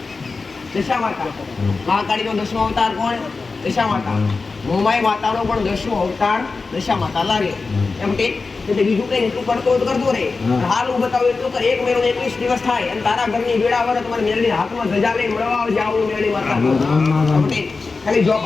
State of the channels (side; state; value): right; quieter; 4.2 dB